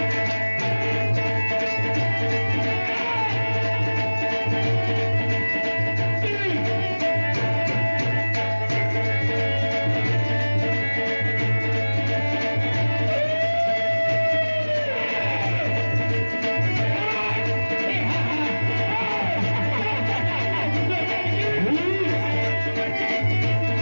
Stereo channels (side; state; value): both; inverted; correlation -1.00